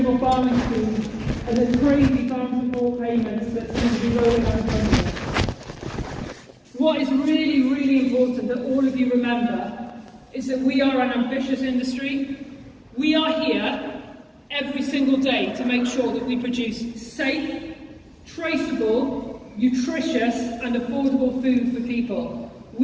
farming scheme and the crazy farm support payments that seem to be rolling out of London. What is really, really important that all of you remember is that we are an ambitious industry. We are here every single day to make sure that we produce safe, traceable, nutritious and affordable food for people.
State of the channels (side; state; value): both; identical; correlation 1.00